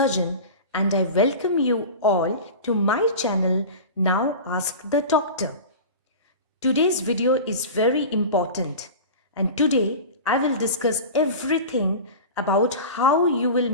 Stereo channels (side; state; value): both; inverted; correlation -0.31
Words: and I welcome you all to my channel Now Ask the Doctor. Today's video is very important and today I will discuss everything about how you will